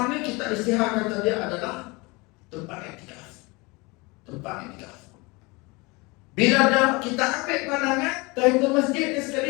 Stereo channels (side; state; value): right; quieter; 25.7 dB